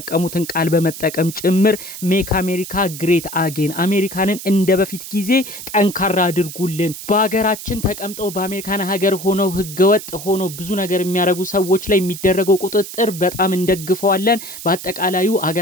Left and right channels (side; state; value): right; noise; hiss, 11 dB below the sound